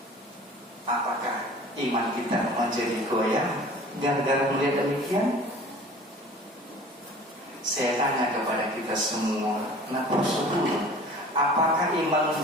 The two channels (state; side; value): normal; both; correlation 0.45